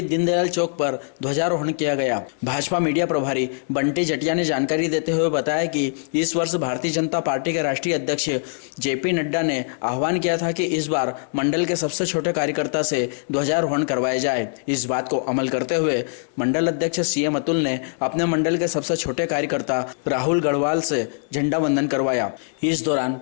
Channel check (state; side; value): silent; right; digital silence